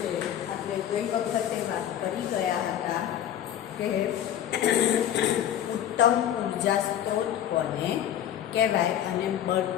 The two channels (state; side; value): quieter; right; 10.6 dB